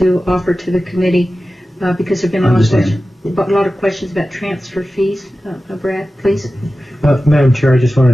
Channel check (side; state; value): both; normal; correlation 0.95